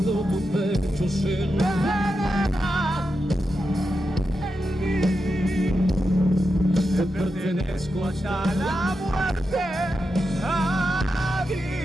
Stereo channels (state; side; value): normal; both; correlation 0.88